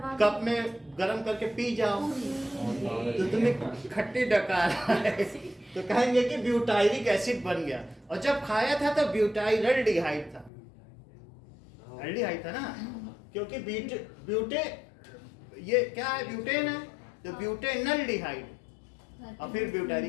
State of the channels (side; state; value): right; drops out; at 10.5 s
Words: कप में गरम करके पी जाओ तो तुम्हें खट्टी डकार है तो कहेंगे कि ब्यूटाइरिक एसिड बन गया। और जब खाया था तो ब्यूटाइरल्डिहाइड था। एल्डिहाइड था ना, क्योंकि ब्यूटे ये क्या है? ब्यूटेन है, तो ब्यूटेनल्डिहाइड और फिर